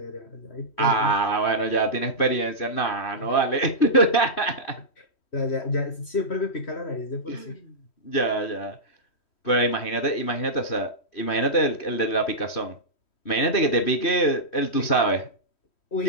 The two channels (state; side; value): late; right; 3.1 ms